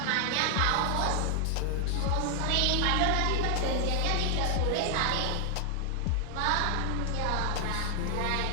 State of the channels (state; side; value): different; both; correlation 0.00